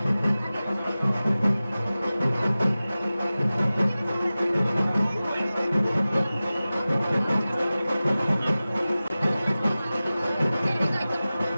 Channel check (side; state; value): both; inverted; correlation -0.96